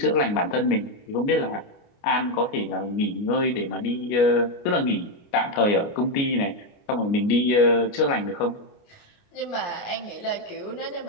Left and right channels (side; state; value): right; late; 29 ms